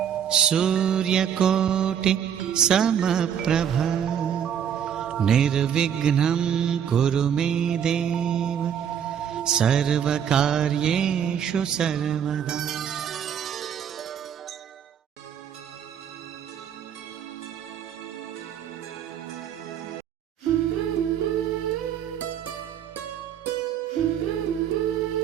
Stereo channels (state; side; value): quieter; left; 8.6 dB